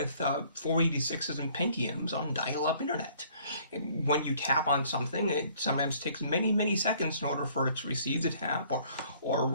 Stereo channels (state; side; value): inverted; both; correlation -0.59